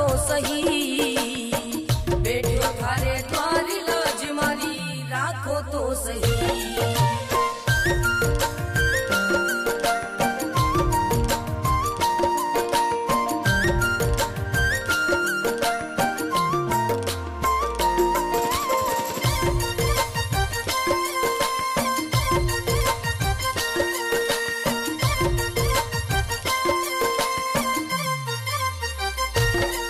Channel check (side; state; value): both; identical; correlation 1.00